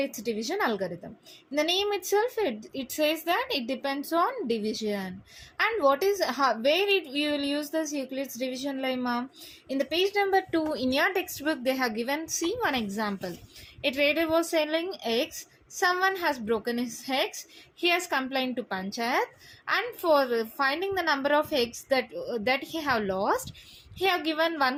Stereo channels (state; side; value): identical; both; correlation 1.00